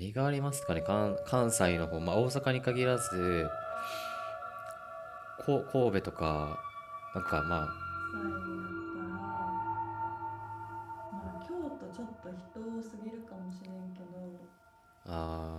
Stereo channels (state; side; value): identical; both; correlation 1.00